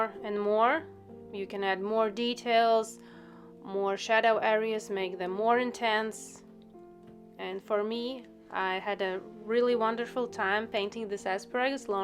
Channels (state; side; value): identical; both; correlation 1.00